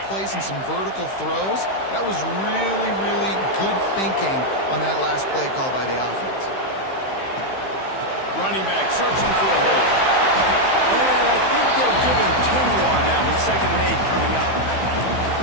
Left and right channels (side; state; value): right; late; 15 ms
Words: plays and some vertical throws. That was really, really good thinking on that last play call by the offense. Running back searching for a hole. And I think they'll give him 2 on that one. 2nd and 8 coming up.